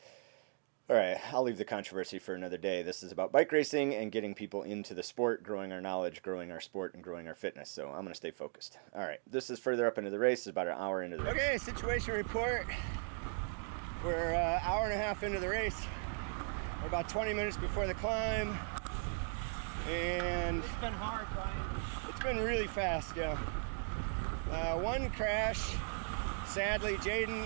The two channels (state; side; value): silent; left; 53 dB below the other